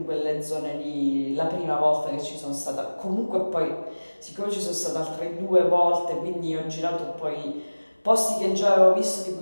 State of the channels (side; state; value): both; inverted; correlation -1.00